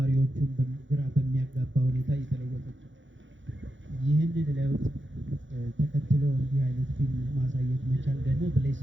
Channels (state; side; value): late; left; 0.55 ms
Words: ግራ በሚያጋባ ሁኔታ እየተለወጠች ነው። ይህንን ለውጥ ተከትሎ እንዲህ አይነት ፊልም ማሳየት መቻል ደግሞ